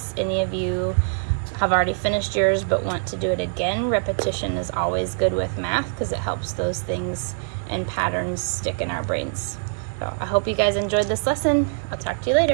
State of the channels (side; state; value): left; silent; digital silence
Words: any of you have already finished yours but want to do it again. Repetition is always good with math because it helps those things and patterns stick in our brains. So I hope you guys enjoyed this lesson. I'll talk to you